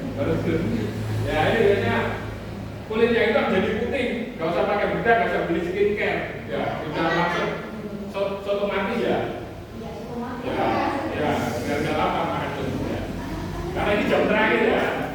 Ya ini biasanya kulitnya itu jadi putih, nggak usah pakai bedak, nggak usah beli skincare, ya sudah langsung otomatis ya. Ya, biar lama makan itu. Ya. Karena ini jam terakhir ya,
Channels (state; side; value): identical; both; correlation 1.00